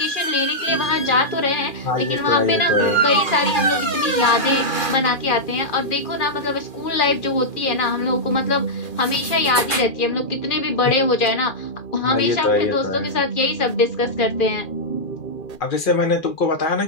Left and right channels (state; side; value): late; right; 2.4 ms